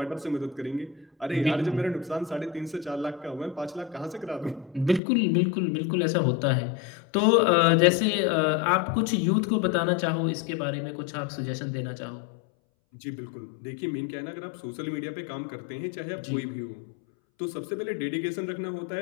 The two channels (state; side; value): drops out; right; at 5.0 s